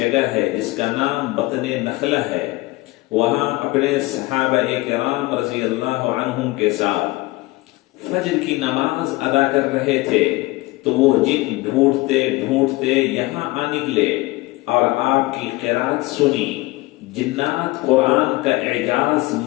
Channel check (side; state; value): right; quieter; 20.7 dB